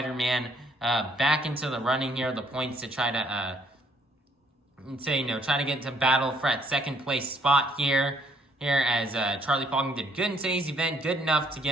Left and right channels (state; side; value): normal; both; correlation 0.66